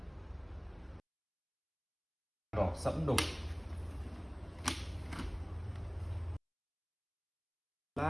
Đỏ sẫm đục.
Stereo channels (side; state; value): both; identical; correlation 1.00